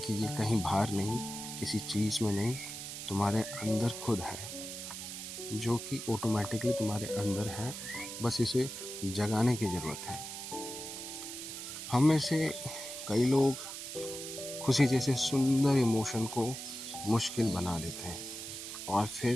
ये कहीं बाहर नहीं, किसी चीज़ में नहीं, तुम्हारे अंदर खुद है, जो कि ऑटोमेटिकली तुम्हारे अंदर है। बस इसे जगाने की ज़रूरत है। हम में से कई लोग खुशी जैसे सुंदर इमोशन को मुश्किल बना देते हैं और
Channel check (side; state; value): right; noise; hiss, 8 dB below the sound